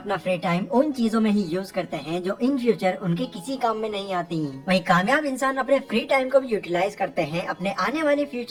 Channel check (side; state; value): both; identical; correlation 1.00